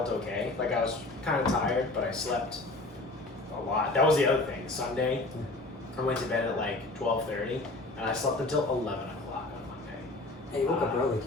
okay. Like I was kind of tired, but I slept a lot. That was the other thing. Sunday, I went to bed at like 12:30, and I slept until 11 o'clock on Monday. Hey, you woke up early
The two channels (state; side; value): quieter; right; 3.0 dB